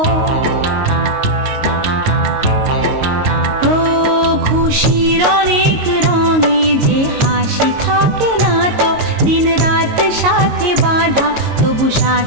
ও খুশির অনেক রঙে যে হাসি থাকে না তো, দিন রাত সাথে বাঁধা তবু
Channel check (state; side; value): late; left; 22 ms